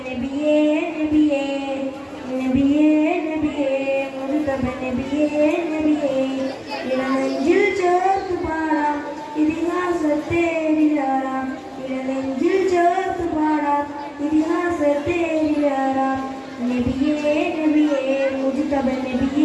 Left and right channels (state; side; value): identical; both; correlation 1.00